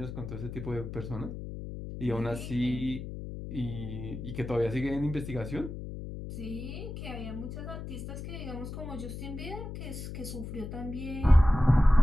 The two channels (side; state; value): left; noise; hum, 8 dB below the sound